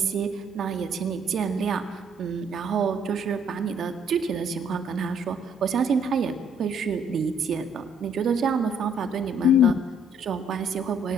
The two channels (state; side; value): normal; both; correlation 0.64